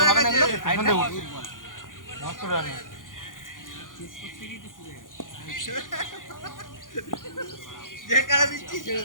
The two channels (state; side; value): late; right; 0.89 ms